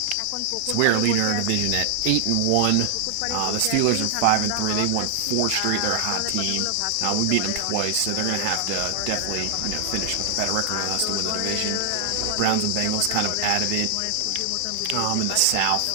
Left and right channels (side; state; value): both; different; correlation 0.00